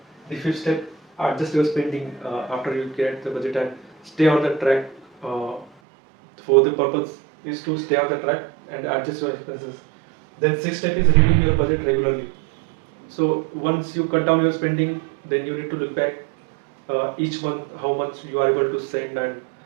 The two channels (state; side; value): drops out; left; at 5.7 s